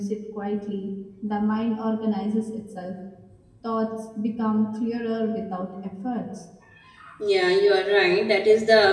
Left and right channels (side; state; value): both; identical; correlation 1.00